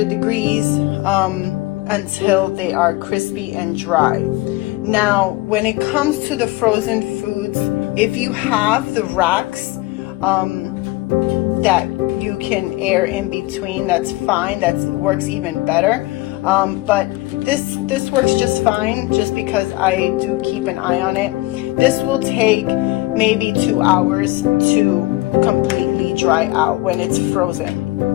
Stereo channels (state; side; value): quieter; right; 20.1 dB